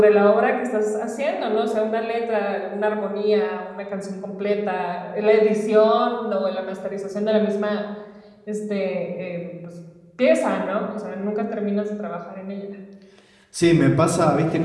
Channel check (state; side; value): identical; both; correlation 1.00